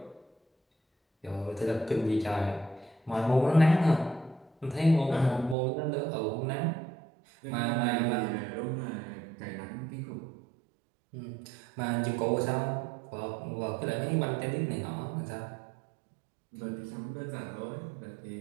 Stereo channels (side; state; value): left; drops out; at 5.6 s